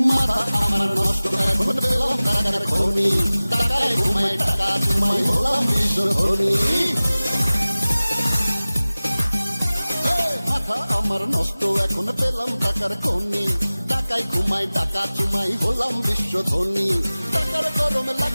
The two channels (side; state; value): both; inverted; correlation -0.98